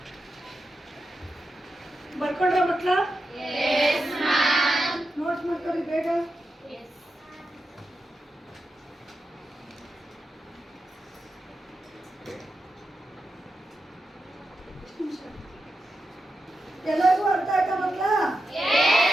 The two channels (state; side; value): normal; both; correlation 0.89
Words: ಬರ್ಕೊಂಡ್ರ ಮಕ್ಕಳ? ನೋಟ್ಸ್ ಮಾಡ್ಕೊಳ್ಳಿ ಬೇಗ. ಎಲ್ಲರಿಗೂ ಅರ್ಥ ಆಯ್ತಾ ಮಕ್ಕಳ?